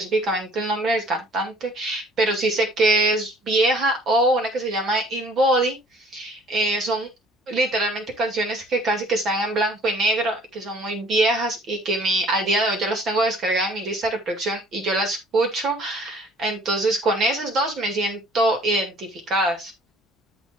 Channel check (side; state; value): both; normal; correlation 0.54